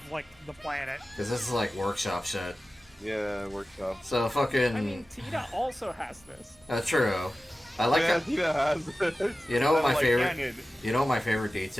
like, the planet? Because this is like workshop shit. Yeah, workshop. So fucking. I mean, Tita also has this. True. I like Yeah, that. Tina has it. You know what my Like favorite? Canyon. You know what my favorite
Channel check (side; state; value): both; normal; correlation 0.95